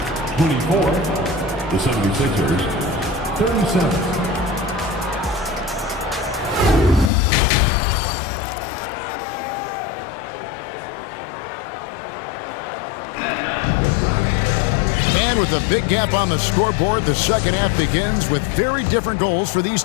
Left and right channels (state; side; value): drops out; right; at 7.1 s